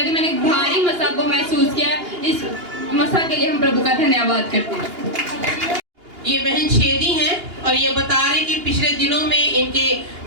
रहे मैंने भारी मसा को महसूस किया। इस मसा के लिए हम प्रभु का धन्यवाद करते हैं। ये बहन छेदी हैं और ये बता रहे कि पिछले दिनों में इनके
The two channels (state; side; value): late; left; 2.8 ms